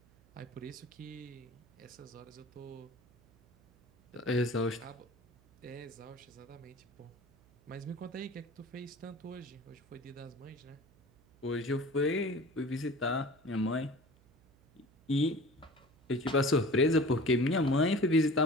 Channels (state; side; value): noise; right; hum, 29 dB below the sound